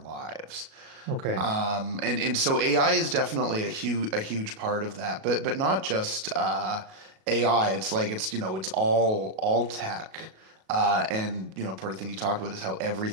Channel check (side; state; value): left; late; 37 ms